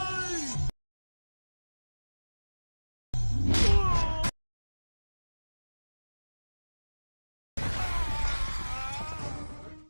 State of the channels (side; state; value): both; inverted; correlation -1.00